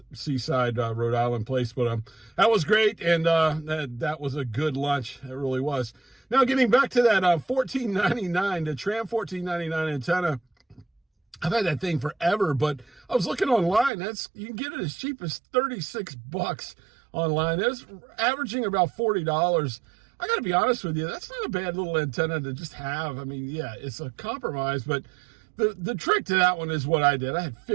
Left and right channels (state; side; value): drops out; left; at 13.9 s